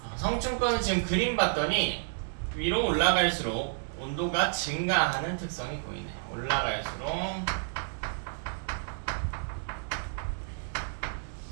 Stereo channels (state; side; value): silent; left; digital silence